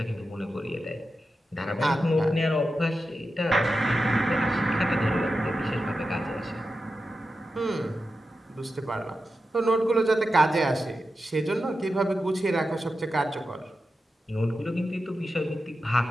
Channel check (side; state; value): both; normal; correlation 0.91